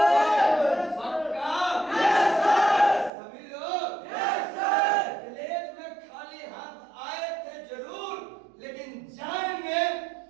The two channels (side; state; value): left; drops out; at 3.1 s